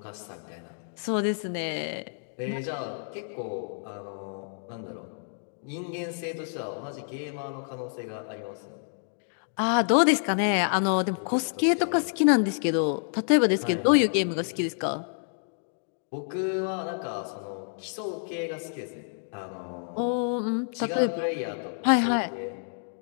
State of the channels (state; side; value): silent; right; digital silence